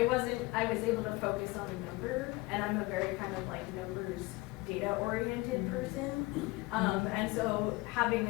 was able to focus on a number, and I'm a very kind of like numbers data oriented person, and so having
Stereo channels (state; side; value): quieter; right; 22.3 dB